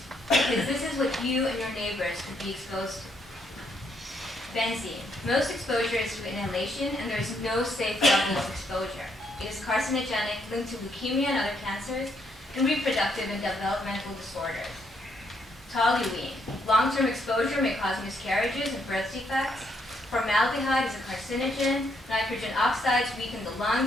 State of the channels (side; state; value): both; normal; correlation 0.74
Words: because this is what you and your neighbors could be exposed to. Benzene. Most exposure is through inhalation, and there is no safe level of exposure. It is carcinogenic, linked to leukemia and other cancers, and reproductive and developmental disorders. Toluene. Long-term exposure may cause miscarriages and birth defects. Formaldehyde is a carcinogen. Nitrogen oxides weaken the